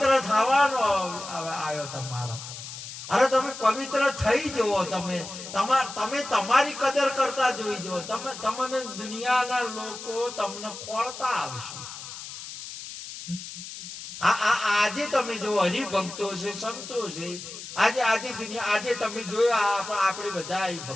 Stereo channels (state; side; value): noise; left; hiss, 11 dB below the sound